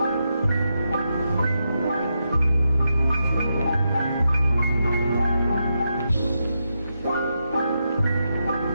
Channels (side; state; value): both; inverted; correlation -0.85